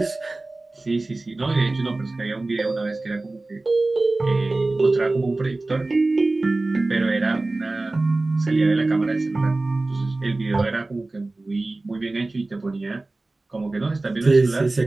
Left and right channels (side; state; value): left; quieter; 3.1 dB